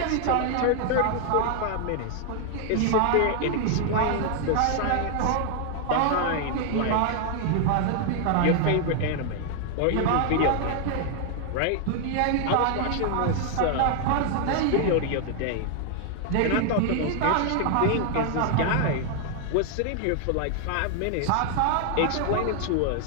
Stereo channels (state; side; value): different; both; correlation 0.00